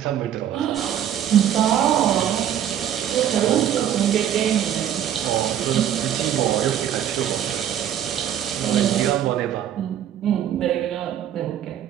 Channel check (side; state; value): left; quieter; 10.3 dB